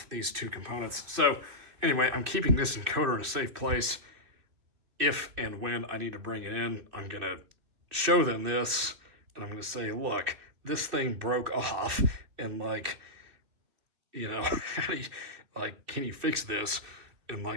these two components. So anyway, I'm keeping this encoder in a safe place. If and when I need to bring it in, I'm going to show them this, and I'm going to say, look, this thing broke off, and can you fix this? And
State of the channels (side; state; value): left; late; 2.6 ms